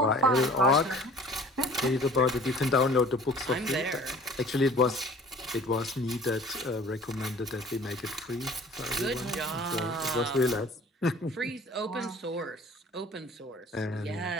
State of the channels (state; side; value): normal; both; correlation 0.49